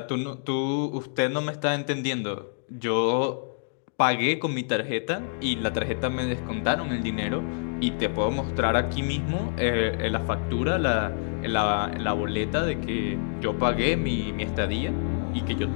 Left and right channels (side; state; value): right; silent; digital silence